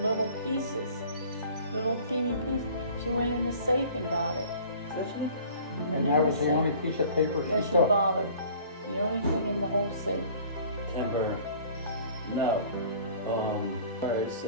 little pieces, little teeny pieces. She went in the safe and got it. Did she? and that was the only piece of paper that she she took. bothered. The only thing in the whole safe. Timber. No. Alright,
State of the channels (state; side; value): inverted; both; correlation -0.49